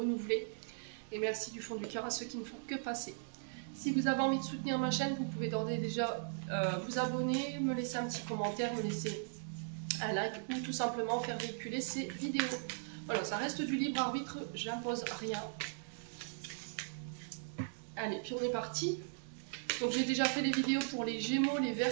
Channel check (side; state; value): left; silent; digital silence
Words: Et merci du fond du cœur à ceux qui ne font que passer. Si vous avez envie de soutenir ma chaîne, vous pouvez d'ores et déjà vous abonner, me laisser un petit commentaire, me laisser un like ou tout simplement faire véhiculer ces vidéos. Voilà, ça reste du libre arbitre, j'impose rien. Allez, puis on est parti. Donc j'ai déjà fait des vidéos pour les Gémeaux, les